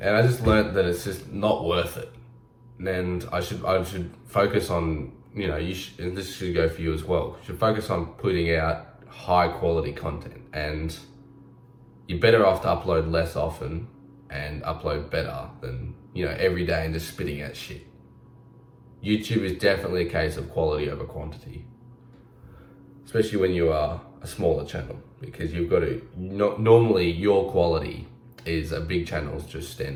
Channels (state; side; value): identical; both; correlation 1.00